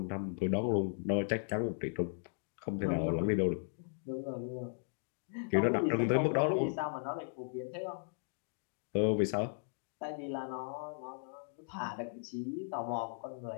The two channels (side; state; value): right; silent; digital silence